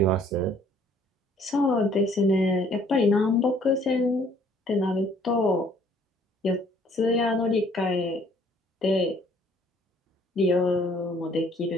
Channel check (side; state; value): both; normal; correlation 0.60